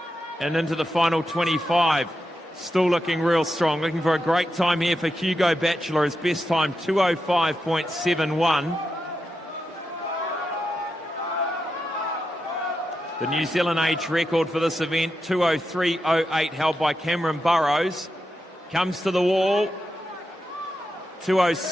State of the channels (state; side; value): normal; both; correlation 0.87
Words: And into the final 25, still looking real strong. Looking for a great time here for Hugo Batchelor. His best time, 2:05.71. The New Zealand age record for this event, 2:03.08, held by Cameron Burrows. Comes to the wall,